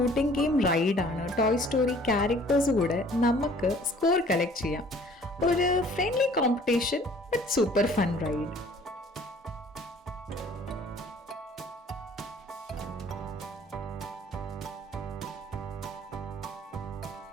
ഗെയിം റൈഡാണ്. ടോയ് സ്റ്റോറി ക്യാരക്ടേഴ്സ് കൂടെ നമുക്ക് സ്കോർ കളക്ട് ചെയ്യാം. ഒരു friendly competition but super fun ride.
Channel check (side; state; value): both; normal; correlation 0.54